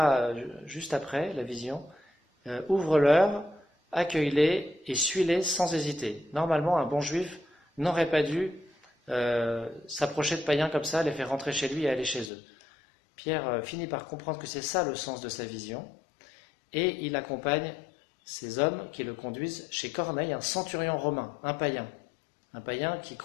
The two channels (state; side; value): drops out; right; at 12.3 s